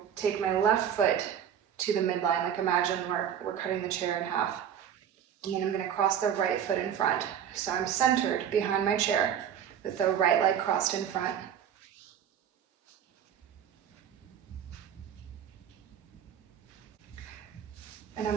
take my left foot to the midline, like imagine we're cutting the chair in half. And then I'm going to cross the right foot in front. So I'm centered behind my chair with the right leg crossed in front. And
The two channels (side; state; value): left; quieter; 9.0 dB